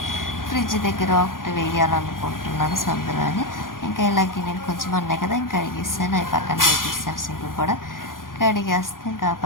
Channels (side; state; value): right; late; 0.90 ms